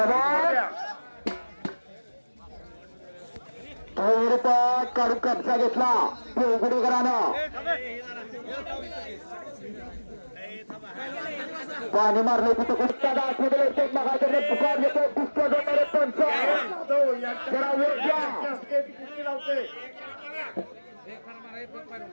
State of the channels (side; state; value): both; inverted; correlation -1.00